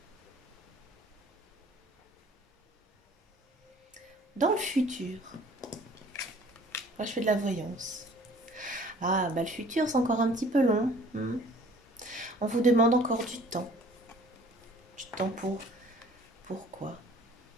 Dans le futur, moi je fais de la voyance. Ah, bah le futur, c'est encore un petit peu long. On vous demande encore du temps. Du temps pour... Pourquoi?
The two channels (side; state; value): both; normal; correlation 0.52